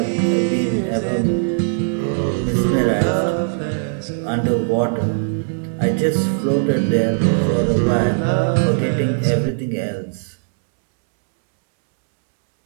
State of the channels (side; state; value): left; silent; digital silence